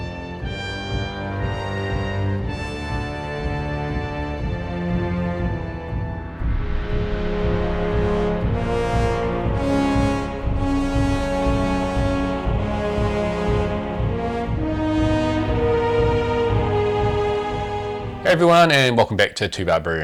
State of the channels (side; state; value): both; identical; correlation 1.00